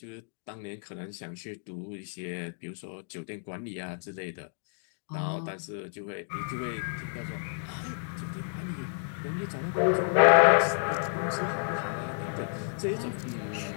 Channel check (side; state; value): right; silent; digital silence